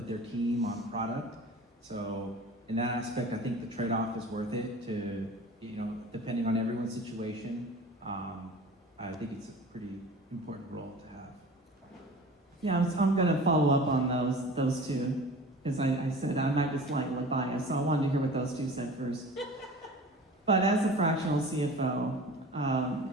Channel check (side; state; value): both; normal; correlation 0.40